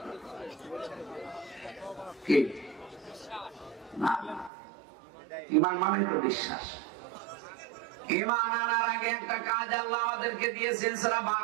কি? না, ঈমান মানে তো বিশ্বাস। ঈমান আনার আগে একটা কাজ আল্লাহ আমাদেরকে দিয়েছেন। সূরা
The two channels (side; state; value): left; drops out; at 4.5 s